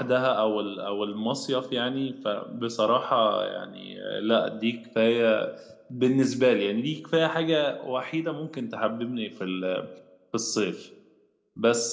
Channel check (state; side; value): identical; both; correlation 1.00